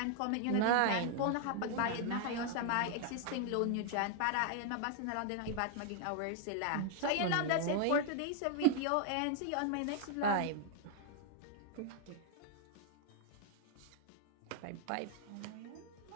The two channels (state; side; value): different; both; correlation 0.00